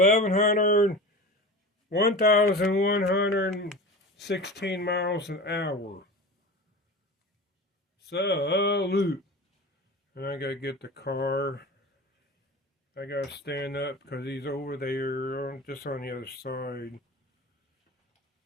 miles an hour. Salute. And I gotta get the car. I gotta stand up because he's over there, just on the other side.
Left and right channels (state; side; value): normal; both; correlation 0.32